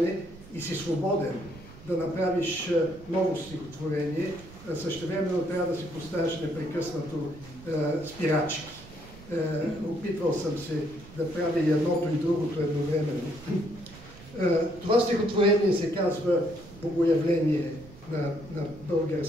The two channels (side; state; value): right; noise; rumble, 18 dB below the sound